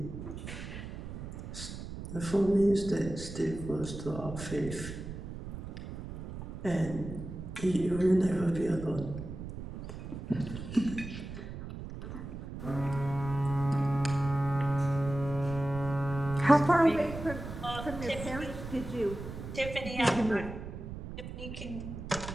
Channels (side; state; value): right; noise; rumble, 9 dB below the sound